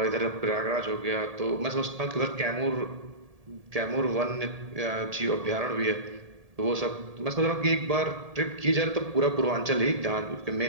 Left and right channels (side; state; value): left; late; 1.7 ms